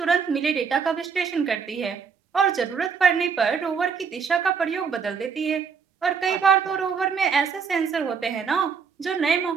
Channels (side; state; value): left; quieter; 6.1 dB